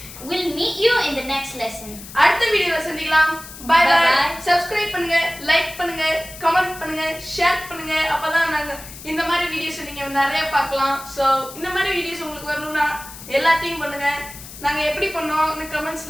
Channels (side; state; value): left; noise; hiss, 15 dB below the sound